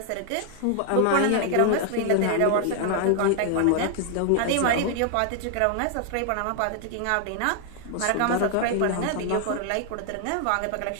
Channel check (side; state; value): both; different; correlation 0.00